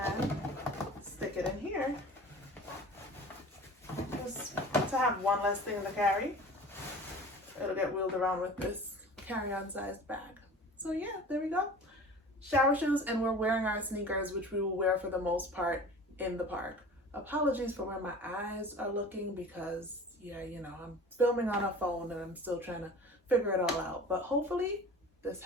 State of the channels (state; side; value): normal; both; correlation 0.40